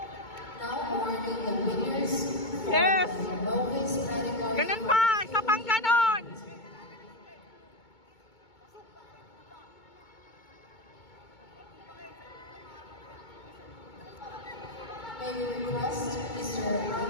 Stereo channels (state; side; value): late; right; 2.2 ms